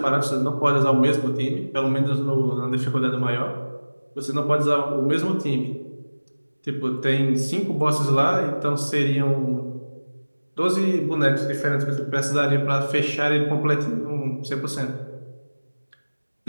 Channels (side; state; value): both; inverted; correlation -1.00